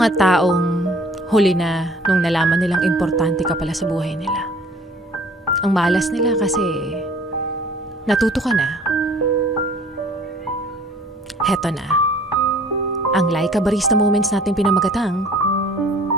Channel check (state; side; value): normal; both; correlation 0.53